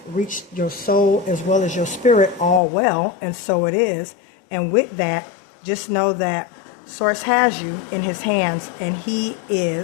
reached your soul as well as your spirit all well, and so it is. And with that, just know that Source has you in his hands, and he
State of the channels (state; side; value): drops out; right; at 2.6 s